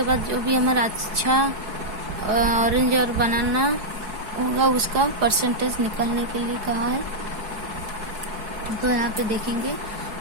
बाद जो भी हमारा अच्छा ऑरेंज और बनाना होगा उसका परसेंटेज निकालने के लिए कहा है। तो यहाँ पे देखेंगे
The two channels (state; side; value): late; left; 4.7 ms